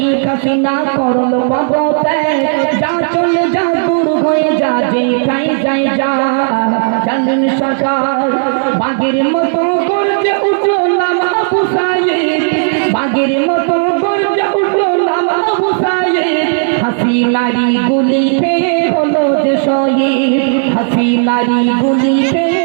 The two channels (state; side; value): silent; left; digital silence